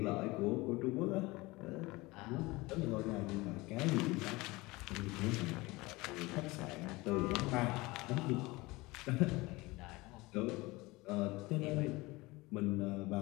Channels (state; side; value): quieter; right; 22.1 dB